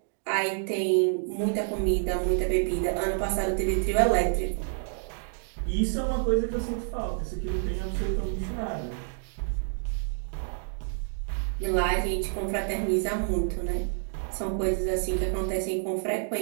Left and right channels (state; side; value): silent; left; digital silence